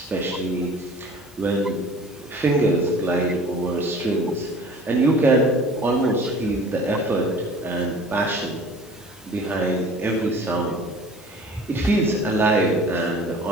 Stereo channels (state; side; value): normal; both; correlation 0.46